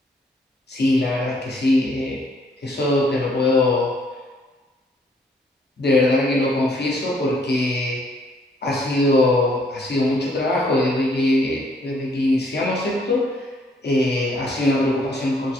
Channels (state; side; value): normal; both; correlation 0.66